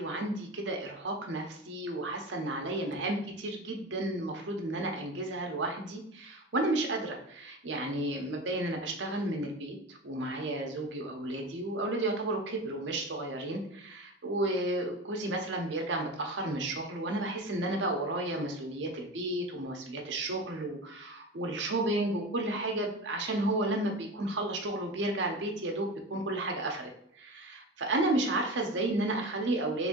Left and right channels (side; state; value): both; normal; correlation 0.28